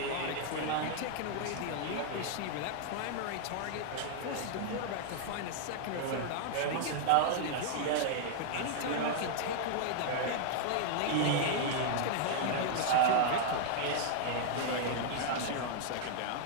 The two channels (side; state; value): both; different; correlation -0.01